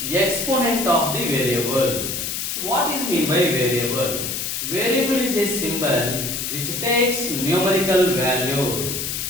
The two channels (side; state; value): left; noise; hiss, 3 dB below the sound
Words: exponent of the variable. So what is mean by variable? Variable is a symbol which takes numerical values.